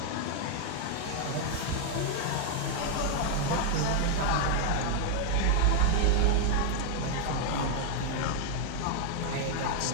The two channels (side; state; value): both; different; correlation 0.00